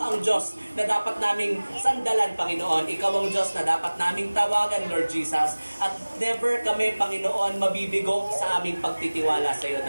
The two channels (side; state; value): both; inverted; correlation -1.00